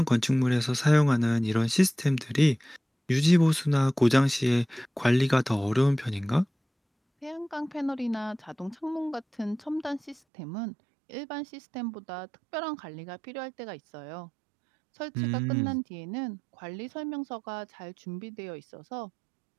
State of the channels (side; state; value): left; drops out; at 10.2 s